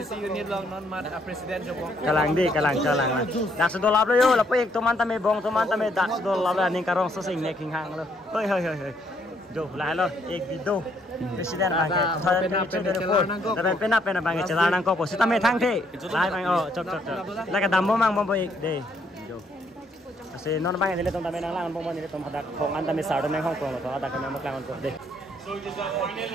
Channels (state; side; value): normal; both; correlation 0.70